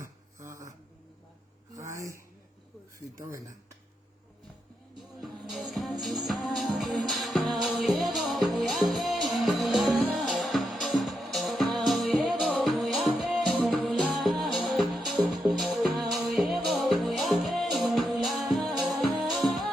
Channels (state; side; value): normal; both; correlation 0.83